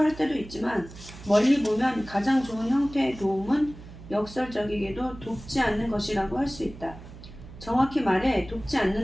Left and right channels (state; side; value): noise; right; hum, 16 dB below the sound